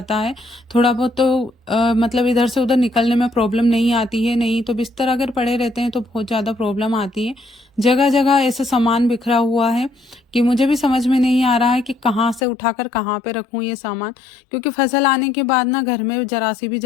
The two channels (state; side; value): drops out; right; at 12.4 s